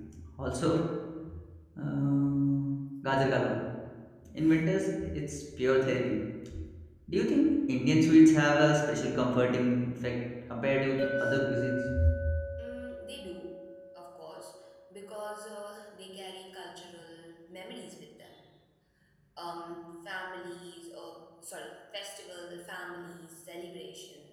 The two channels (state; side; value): identical; both; correlation 1.00